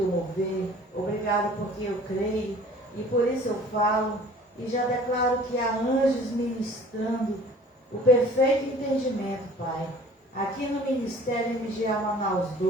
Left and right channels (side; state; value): both; normal; correlation 0.49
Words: mover, obrigado porque eu creio e por isso eu falo e já declaro que há anjos ministrando o perfeito entendimento, Pai. Aqui no Ministério MGA Manaus